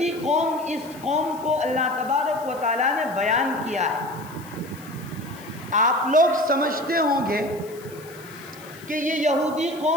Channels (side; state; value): left; noise; hiss, 21 dB below the sound